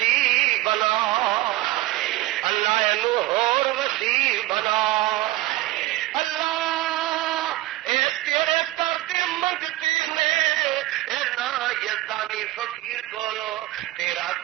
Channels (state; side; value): quieter; left; 17.7 dB